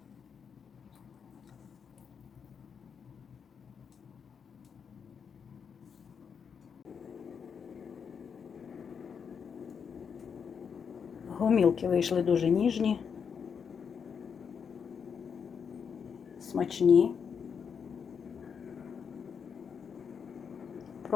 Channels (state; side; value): quieter; right; 6.7 dB